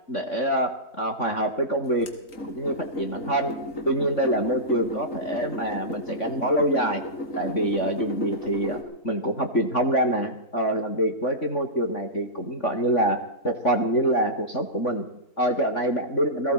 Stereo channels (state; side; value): late; right; 3.8 ms